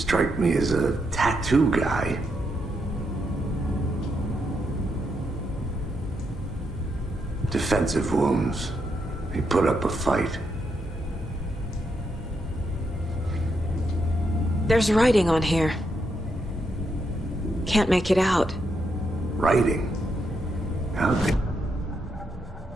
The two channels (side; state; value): both; normal; correlation 0.80